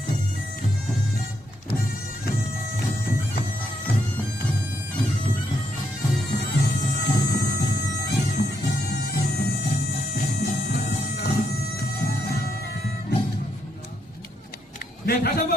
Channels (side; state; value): both; normal; correlation 0.77